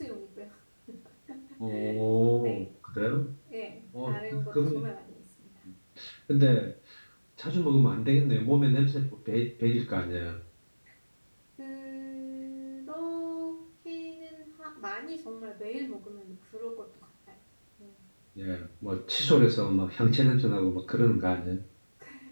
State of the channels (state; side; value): inverted; both; correlation -1.00